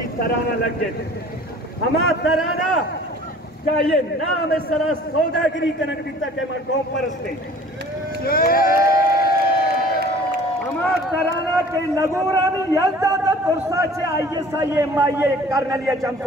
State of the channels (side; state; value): both; normal; correlation 0.48